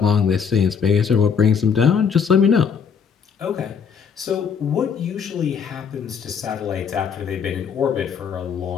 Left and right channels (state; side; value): quieter; right; 6.7 dB